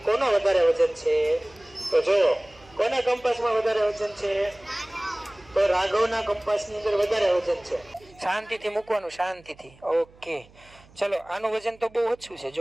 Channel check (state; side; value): noise; right; hum, 26 dB below the sound